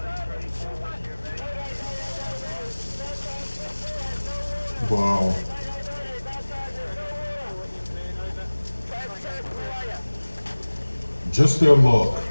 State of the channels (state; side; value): inverted; both; correlation -1.00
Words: Wow. Just their luck.